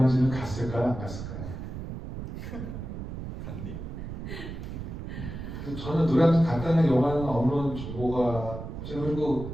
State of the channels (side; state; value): right; noise; rumble, 8 dB below the sound